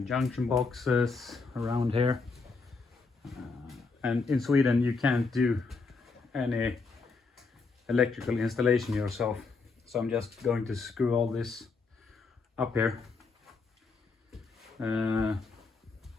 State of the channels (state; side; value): quieter; right; 4.2 dB